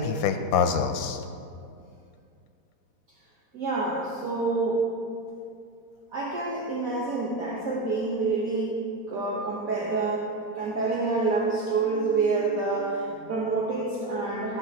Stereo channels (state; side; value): late; right; 4.1 ms